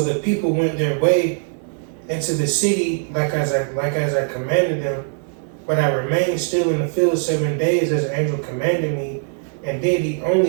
the people went their way into the city like as I commanded them. But I remained still in the field 7 days as the angel commanded me, and did eat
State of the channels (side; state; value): left; silent; 62 dB below the other